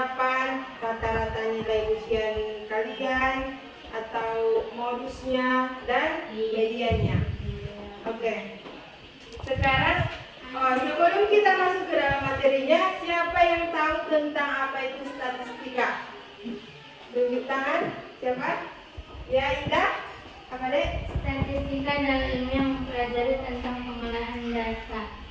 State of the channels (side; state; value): both; identical; correlation 1.00